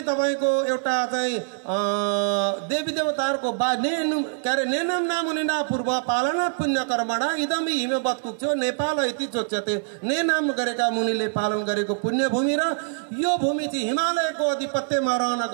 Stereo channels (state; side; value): silent; left; 62 dB below the other